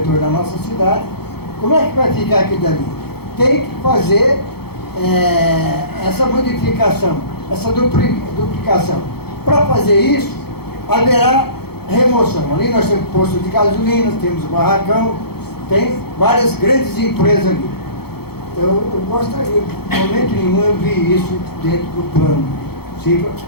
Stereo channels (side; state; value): right; late; 0.96 ms